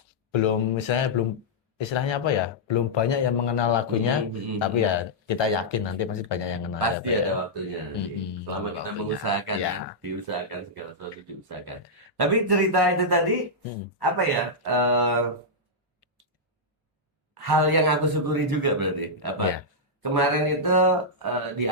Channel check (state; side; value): normal; both; correlation -0.08